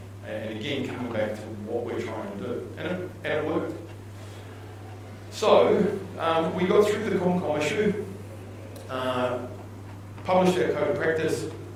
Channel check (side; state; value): both; identical; correlation 1.00